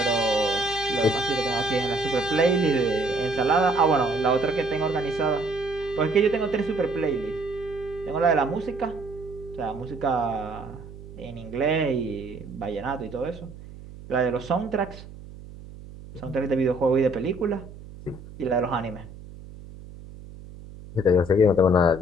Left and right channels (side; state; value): right; noise; hum, 16 dB below the sound